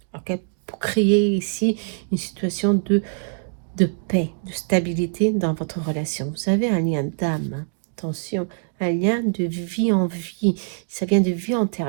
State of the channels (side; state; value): left; silent; digital silence